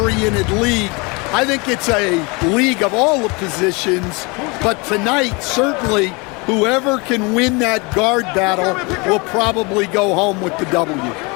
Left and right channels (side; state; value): right; quieter; 28.2 dB